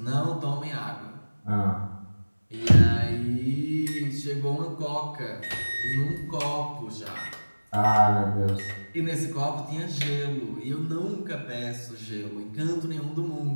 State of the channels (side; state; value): both; inverted; correlation -1.00